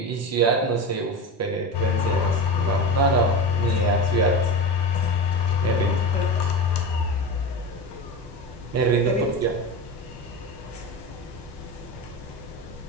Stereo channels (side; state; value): both; normal; correlation 0.24